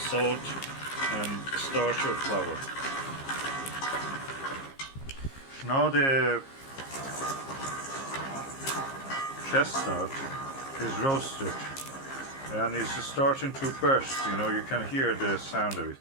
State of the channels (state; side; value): late; right; 15 ms